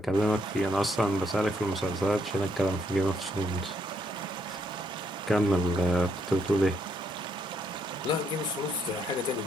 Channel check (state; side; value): normal; both; correlation 0.74